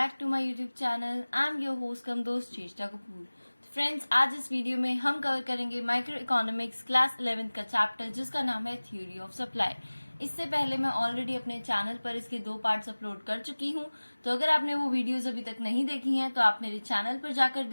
to my YouTube channel. I am your host cum दोस्त Cheshta Kapoor. Friends, आज इस video में हम कवर करेंगे माइक्रो इकोनॉमिक्स क्लास 11th का चैप्टर जिसका नाम है थ्योरी ऑफ सप्लाई। इससे पहले मैं ऑलरेडी अपने चैनल पर इसके 2 पार्ट्स अपलोड कर चुकी हूँ, तो अगर आपने वो वीडियोज अभी तक नहीं देखी हैं तो आप मेरे चैनल पर जाकर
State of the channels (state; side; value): inverted; both; correlation -1.00